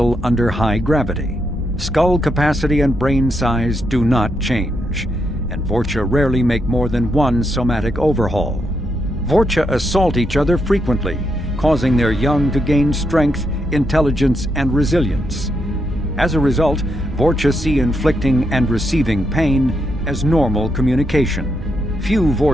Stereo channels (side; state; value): both; normal; correlation 0.81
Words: under high gravity. Skull capacity and brain size do not change, and Vorcha rarely make more than one somatic overhaul. Vorcha assault each other frequently, causing their young to gain strength, intelligence, and resilience. As a result, Vorcha see inflicting and receiving pain as normal communication. Few